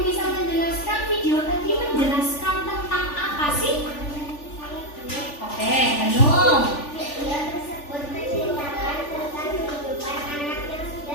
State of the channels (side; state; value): right; late; 3.4 ms